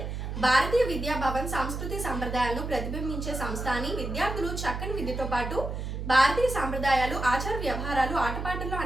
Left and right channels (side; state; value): right; noise; hum, 5 dB below the sound